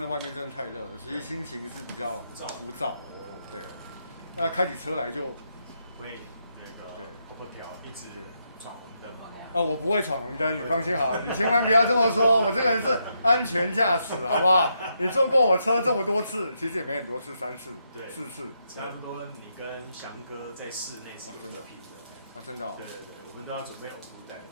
外面真的太热了，所以心情是比较浮躁。对，那开起车来就会跑不掉，一直闯红灯嘛。我不会闯红灯，你放心好，你千万不要这么说，我这个人是安全驾驶，好不好？你坐过我车这么多次，其实也没很多次，3次、4次，差不多。你跟翔哥在室内是真的拼的，真的。对，我们都要准备呕吐袋。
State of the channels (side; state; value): both; inverted; correlation -0.80